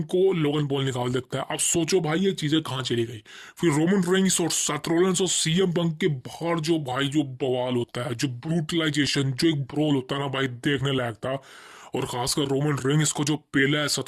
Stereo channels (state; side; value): identical; both; correlation 1.00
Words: को लोगन पॉल निकाल देता है। अब सोचो भाई ये चीजें कहाँ चली गई। फिर रोमन रेंस और सेथ रॉलिंस और सीएम पंक के बाहर जो भाई जो बवाल होता है, जो ब्रूटलाइजेशन, जो एक ब्रोल होता है ना भाई, देखने लायक था। और खासकर रोमन रेंस को जो पेला है